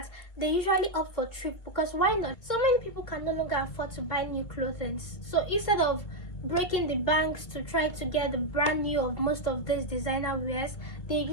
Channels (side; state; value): right; late; 2.2 ms